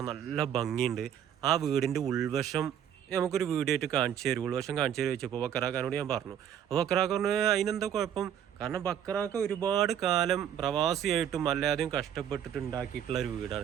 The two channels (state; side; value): quieter; left; 9.4 dB